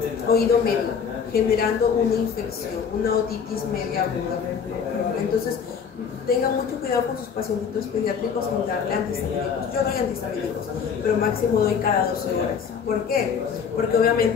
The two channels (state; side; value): quieter; right; 6.7 dB